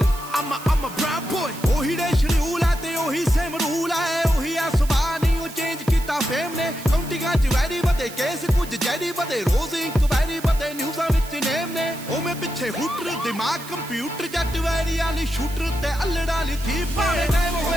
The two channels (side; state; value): right; noise; hiss, 15 dB below the sound